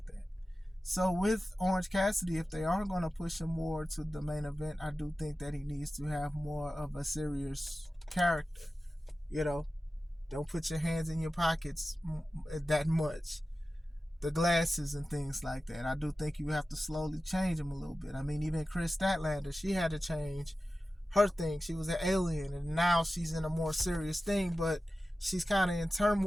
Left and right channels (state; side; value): normal; both; correlation 0.94